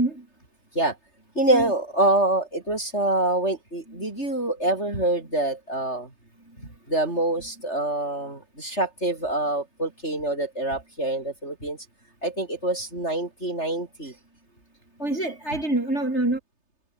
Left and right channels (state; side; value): late; right; 3.3 ms